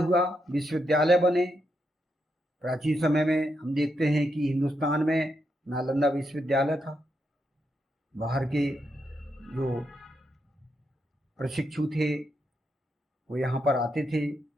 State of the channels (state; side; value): normal; both; correlation 0.82